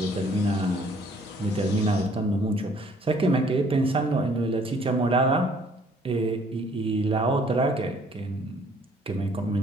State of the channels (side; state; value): both; normal; correlation 0.60